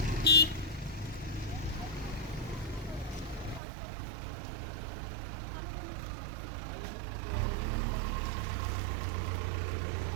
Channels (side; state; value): left; drops out; at 3.6 s